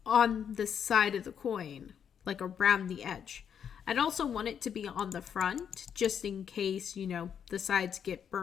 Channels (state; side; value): quieter; right; 8.0 dB